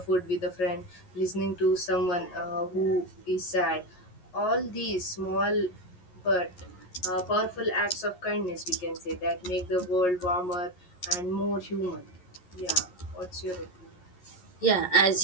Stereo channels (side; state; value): right; late; 11 ms